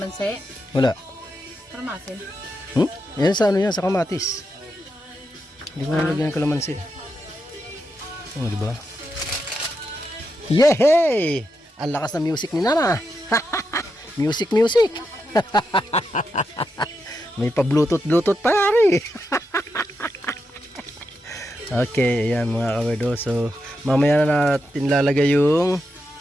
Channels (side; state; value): both; normal; correlation 0.85